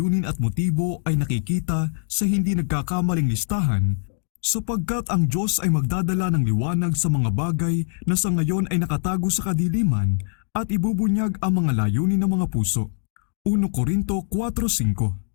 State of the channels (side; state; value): right; silent; digital silence